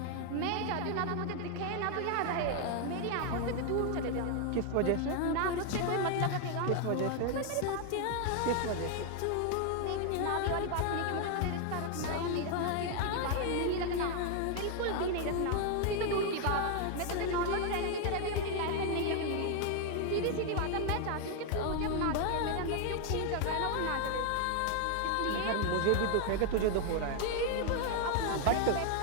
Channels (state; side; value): different; both; correlation 0.00